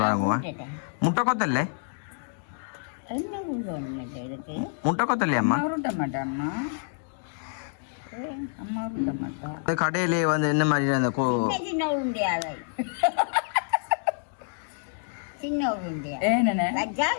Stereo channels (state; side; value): silent; right; digital silence